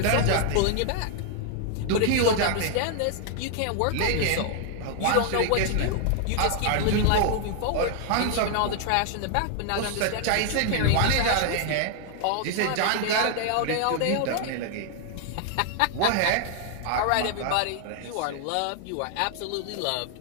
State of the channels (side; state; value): both; different; correlation 0.00